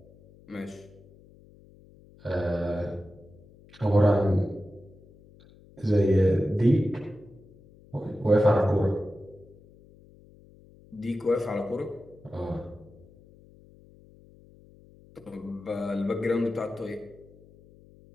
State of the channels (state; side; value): noise; left; hum, 25 dB below the sound